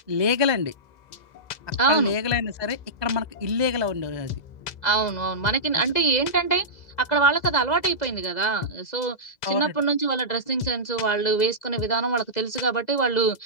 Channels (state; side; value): late; right; 2.0 ms